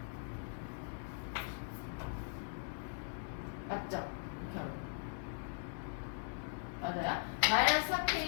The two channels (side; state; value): right; silent; digital silence